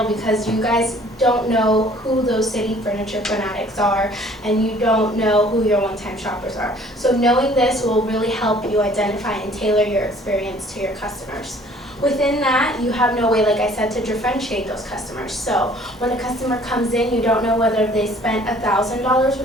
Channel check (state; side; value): normal; both; correlation 0.55